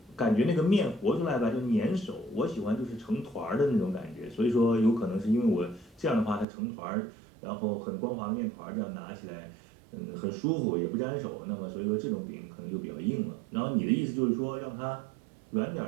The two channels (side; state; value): left; drops out; at 6.5 s